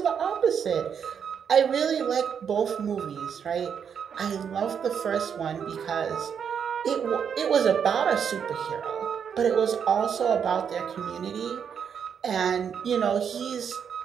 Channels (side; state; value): left; quieter; 7.4 dB